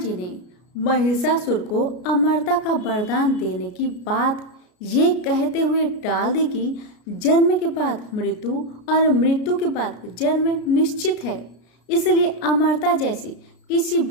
ने महिषासुर को अमरता का वरदान देने की बात ये कहते हुए टाल दी कि जन्म के बाद मृत्यु और मृत्यु के बाद जन्म निश्चित है, इसलिए अमरता जैसी किसी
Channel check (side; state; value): right; late; 33 ms